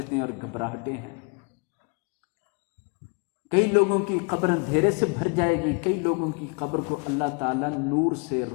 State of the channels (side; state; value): right; quieter; 31.6 dB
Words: اور گھبراہٹیں ہیں۔ کئی لوگوں کی قبر اندھیرے سے بھر جائے گی، کئی لوگوں کی قبر کو اللہ تعالیٰ نور سے،